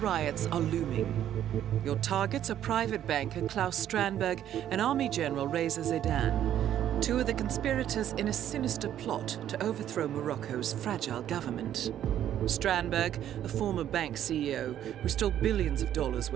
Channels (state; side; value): quieter; left; 11.0 dB